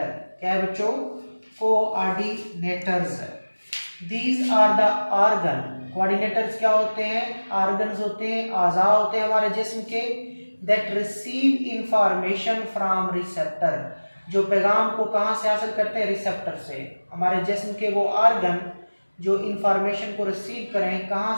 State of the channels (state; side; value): inverted; both; correlation -1.00